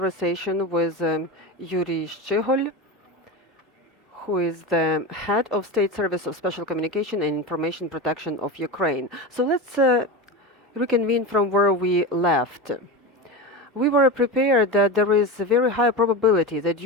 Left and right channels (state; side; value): normal; both; correlation 0.22